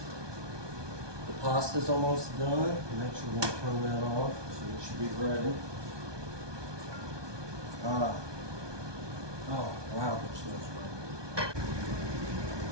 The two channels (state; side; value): late; left; 1.2 ms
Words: The pasta's almost done. I'm actually going to turn that off so it should be ready. Oh, wow, it smells great.